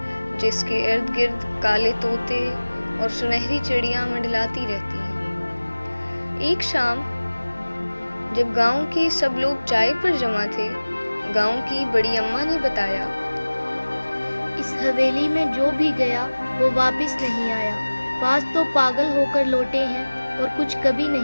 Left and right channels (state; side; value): inverted; both; correlation -1.00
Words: جس کے ارد گرد کالے طوطے اور سنہری چڑیاں منڈلاتی رہتی ہیں۔ ایک شام جب گاؤں کے سب لوگ چائے پر جمع تھے، گاؤں کی بڑی اماں نے بتایا، اس حویلی میں جو بھی گیا وہ واپس نہیں آیا۔ بعض تو پاگل ہو کر لوٹے ہیں اور کچھ کبھی